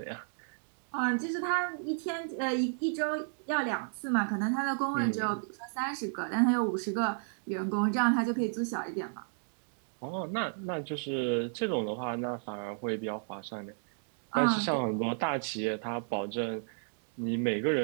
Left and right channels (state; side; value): silent; left; digital silence